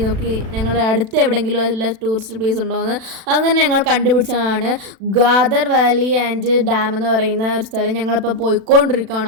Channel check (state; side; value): late; left; 36 ms